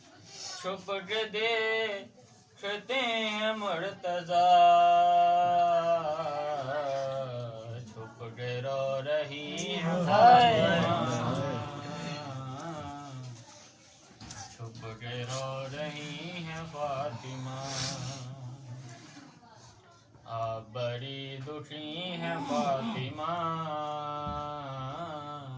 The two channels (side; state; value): both; identical; correlation 1.00